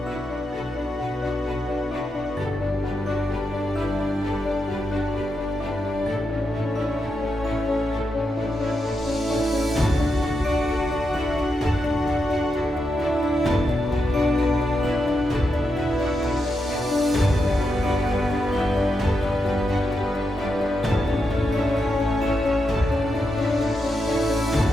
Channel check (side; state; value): both; normal; correlation 0.85